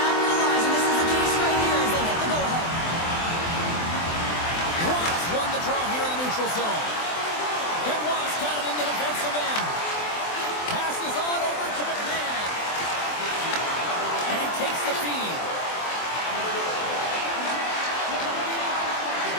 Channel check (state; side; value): late; right; 24 ms